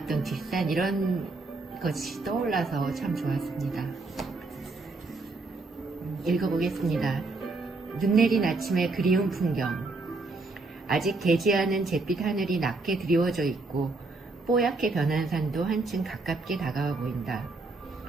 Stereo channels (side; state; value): left; quieter; 3.4 dB